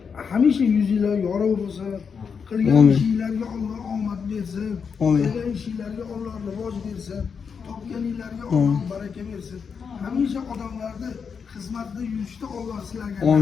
Hamisha yuzinglar yorug' bo'lsin. Qilgan ishinglarga Alloh omad bersin. Qilgan ishinglarga Alloh rivoj bersin. Topganinglarga Alloh baraka bersin. Hamisha odamlarni xizmatda yurishda Alloh sizlarga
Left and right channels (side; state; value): right; quieter; 6.2 dB